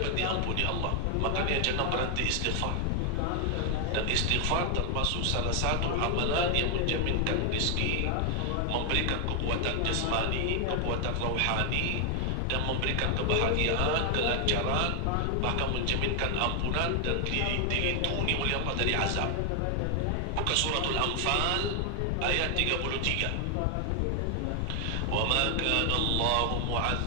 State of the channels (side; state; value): both; different; correlation 0.00